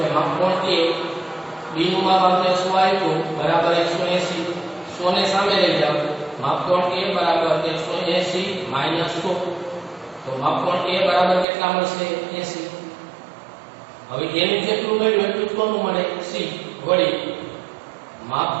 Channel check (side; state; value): left; drops out; at 11.5 s